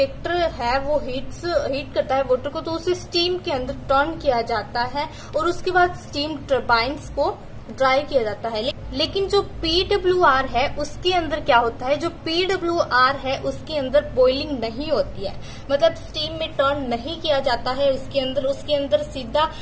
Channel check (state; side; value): identical; both; correlation 1.00